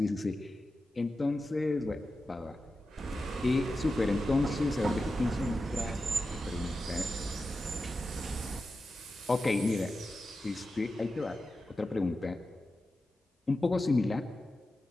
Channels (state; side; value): normal; both; correlation 0.91